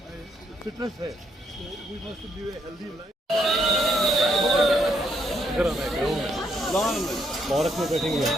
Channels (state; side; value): normal; both; correlation 0.74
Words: फिटनेस है, तो we must live a healthy life. Park में बैठेंगे।